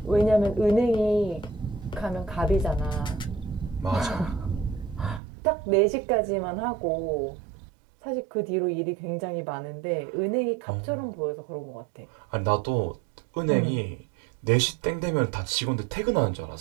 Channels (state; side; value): drops out; left; at 5.2 s